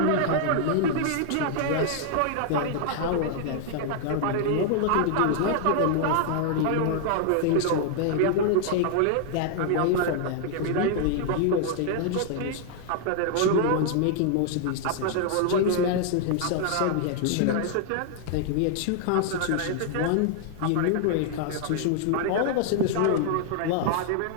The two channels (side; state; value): both; different; correlation 0.00